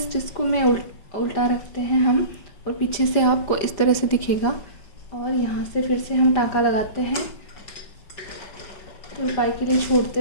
इसको मैं उल्टा रखते हैं हम, और पीछे से आपको इस तरह से दिखेगा, और यहाँ से फिर से हम टाँका लगाते हैं तुरपाई के लिए छोड़ते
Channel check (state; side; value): late; right; 5.3 ms